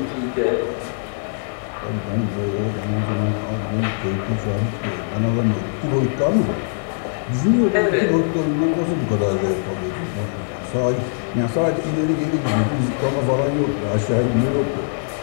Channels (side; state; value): right; silent; digital silence